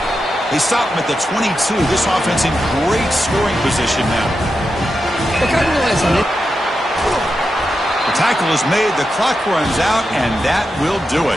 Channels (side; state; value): both; normal; correlation 0.88